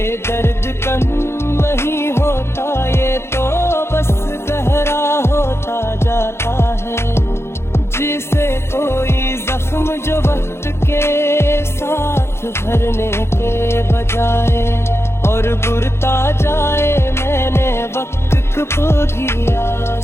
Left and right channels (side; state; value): right; late; 0.12 ms